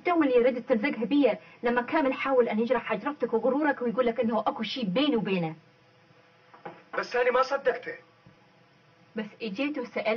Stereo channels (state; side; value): identical; both; correlation 1.00